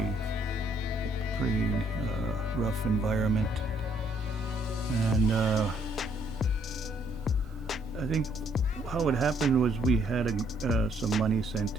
rough environment. And I think how it happened was we had some money sent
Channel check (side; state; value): both; normal; correlation 0.68